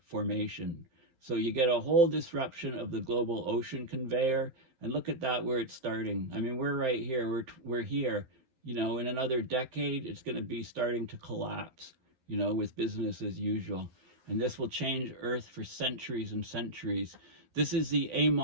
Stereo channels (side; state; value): left; late; 11 ms